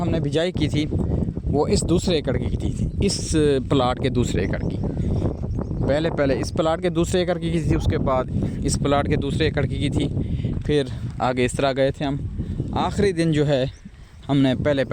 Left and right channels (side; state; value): both; identical; correlation 1.00